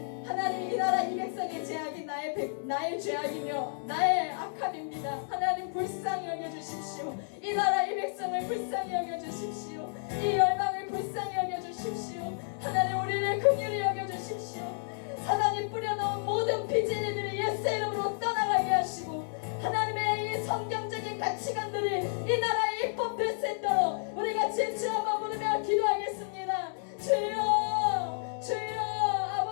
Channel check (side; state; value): right; silent; 57 dB below the other